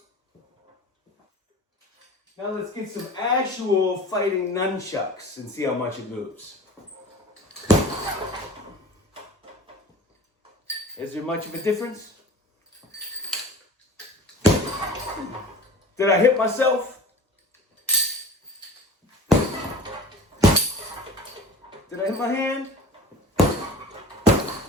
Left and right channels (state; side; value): normal; both; correlation 0.40